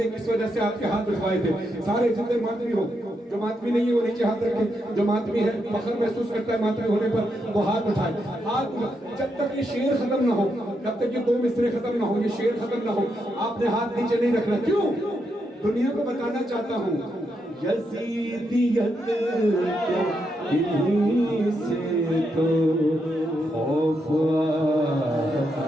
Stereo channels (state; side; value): normal; both; correlation 0.81